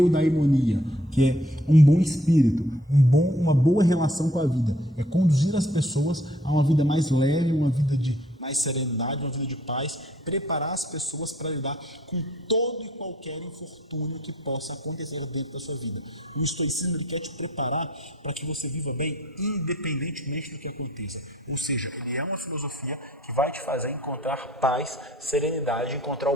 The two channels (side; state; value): both; normal; correlation 0.60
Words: que é um bom espírito, uma boa relação com a vida. É conduzir as pessoas a uma vida mais leve, uma vida de mais serenidade, uma vida de paz, preparar as pessoas para lidar com todo e qualquer infortúnio que possa acontecer dentro da sua vida. O estoicismo ele quer te preparar para que você viva bem independentemente do que aconteça. Ou seja, ele é uma filosofia que vai te fazer encontrar paz, serenidade, encontrar